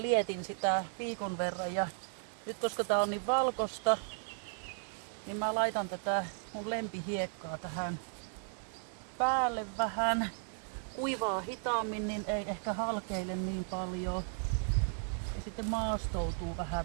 lietin sitä viikon verran ja nyt koska tää on niin valkosta, niin mä laitan tätä mun lempihiekkaa tähän päälle vähän. Kuivaa hitaammin, niin ei ehkä halkeile niin paljon. Ja sitten maastoutuu vähän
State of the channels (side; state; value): left; silent; 54 dB below the other